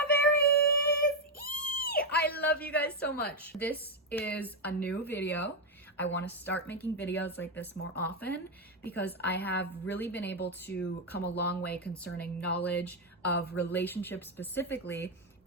I love you guys so much. This is a new video. I want to start making videos like this more often because I have really been able to come a long way concerning knowledge of relationships, specifically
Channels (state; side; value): normal; both; correlation 0.03